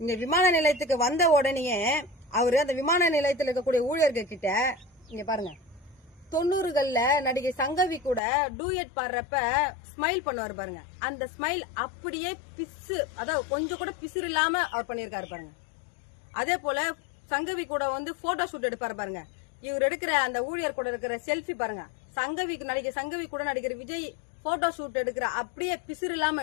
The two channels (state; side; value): drops out; right; at 8.2 s